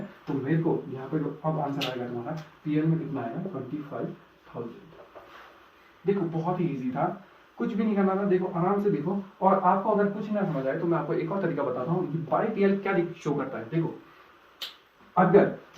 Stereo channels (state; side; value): identical; both; correlation 1.00